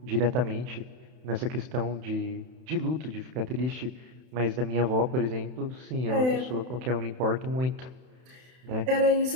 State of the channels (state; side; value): late; left; 31 ms